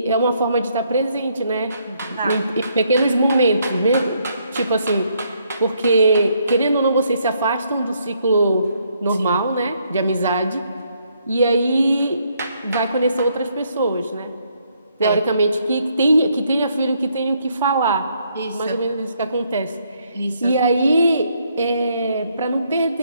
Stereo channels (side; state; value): both; inverted; correlation -0.72